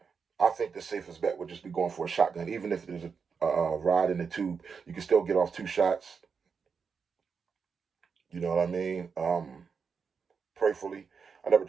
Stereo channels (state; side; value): quieter; left; 5.8 dB